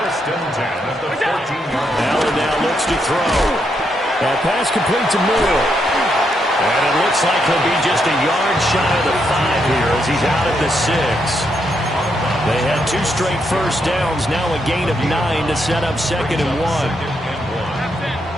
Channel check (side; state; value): both; normal; correlation 0.79